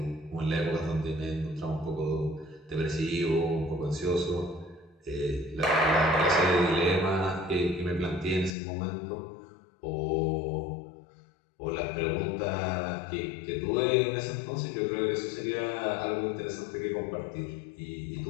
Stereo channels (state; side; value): drops out; right; at 8.6 s